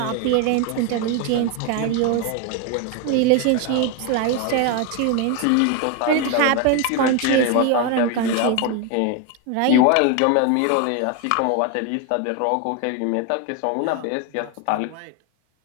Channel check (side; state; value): both; different; correlation 0.01